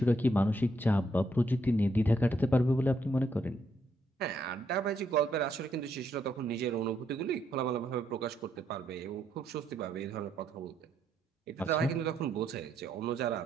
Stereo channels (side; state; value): both; normal; correlation 0.75